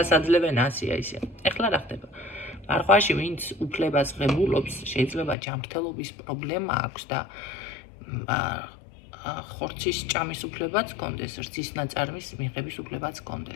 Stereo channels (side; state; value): right; drops out; at 5.4 s